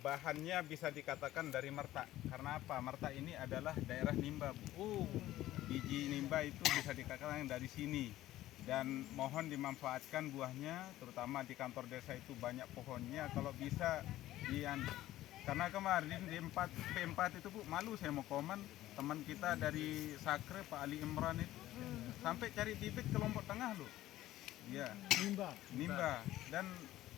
bahannya bisa dikatakan dari Merta. Karena apa? Merta ini adalah daerah nimba. Biji nimba itu bisa dikatakan dari sini. Dan mohon dimanfaatkan buahnya, terutama di kantor desa itu banyak pohonnya. Kalau bisa karena kemarin di P4 itu Bu, malu saya mau komen, teman kita dari Sakre Pak Ali Imran itu sampai cari bibit ke Lombok Tengah loh. Iya. Nimba. Dan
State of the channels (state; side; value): quieter; right; 14.8 dB